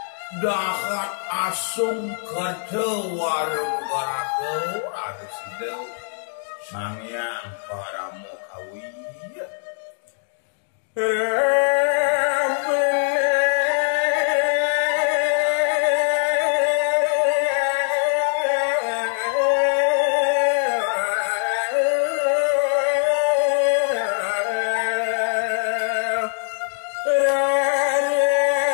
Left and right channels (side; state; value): right; silent; 64 dB below the other